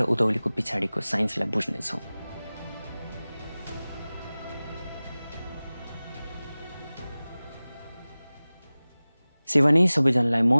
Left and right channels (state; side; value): inverted; both; correlation -0.98